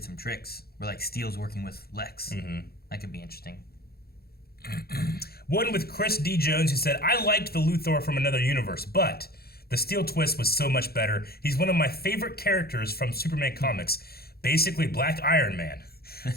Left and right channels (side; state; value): right; late; 0.45 ms